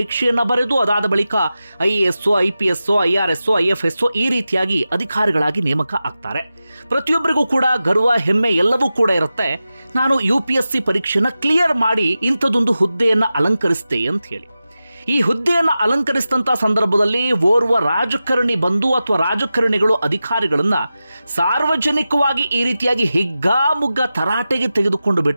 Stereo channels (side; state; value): both; inverted; correlation -0.93